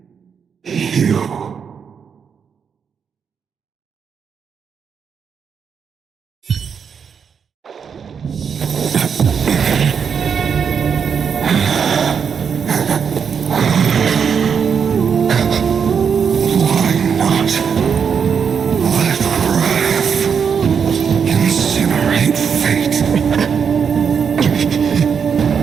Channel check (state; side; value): quieter; left; 6.8 dB